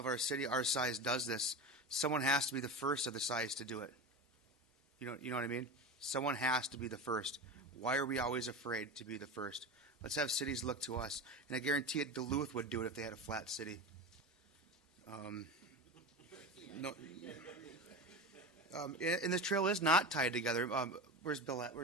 our city, our size, does this, someone has to be the first of the size to do it. You know what I mean? Someone has to be the first. Why are we always afraid to be the first? Let's have cities look to us. And I guarantee it, Duluth would do it if they had a flat city. No. And this trail is not tied together. Where's Bill at?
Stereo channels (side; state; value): both; normal; correlation 0.25